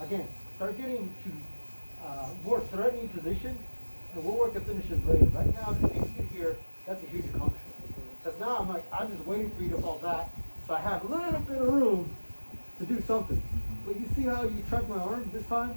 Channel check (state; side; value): inverted; both; correlation -1.00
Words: start getting to more threatening position, and we'll work the finishes later. Right now, if you get here, that's a huge accomplishment. Because now I'm just waiting for you to fall back, so I have a little bit of room to do something. But you see how you tracked my arm this time?